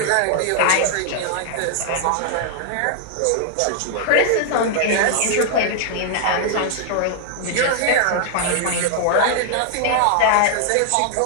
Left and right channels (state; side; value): different; both; correlation 0.00